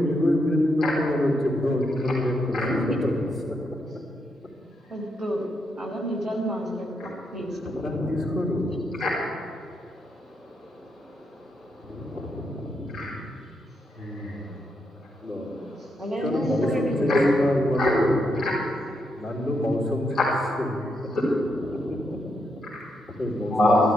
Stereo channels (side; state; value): both; normal; correlation 0.80